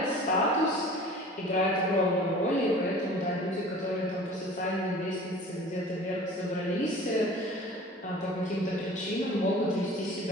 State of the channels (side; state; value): both; normal; correlation 0.44